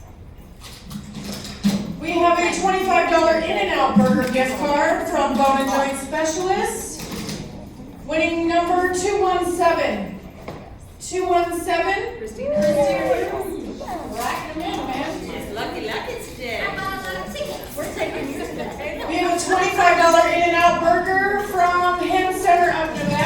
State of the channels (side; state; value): both; identical; correlation 1.00